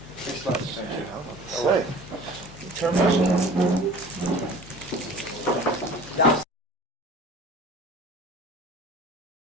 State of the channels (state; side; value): normal; both; correlation 0.44